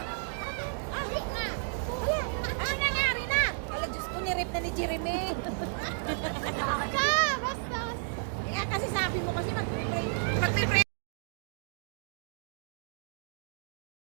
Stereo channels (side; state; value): left; silent; digital silence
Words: Abit na! Wala! Ano nangyari na? Wala, Diyos ko, nirip na ni Jeremy. Basta! Basta! Kaya kasi sabi mo kasi